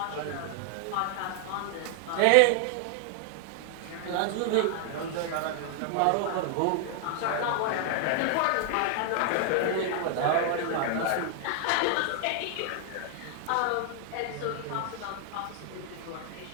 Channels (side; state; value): both; different; correlation 0.00